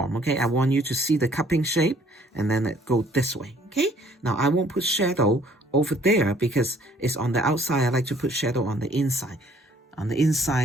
Okay, I want you to see the cupping shape, and then it go this way. Okay, now I won't put shadow over there because it's on the outside. I like to put shadow on the inside. On the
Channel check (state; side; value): normal; both; correlation 0.60